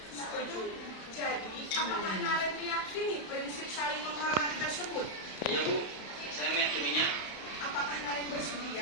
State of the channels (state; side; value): late; right; 31 ms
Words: Setuju. Jadi, apakah Naren meyakini prinsip saling menghormati tersebut? Iya Bu, saya meyakininya. Apakah Naren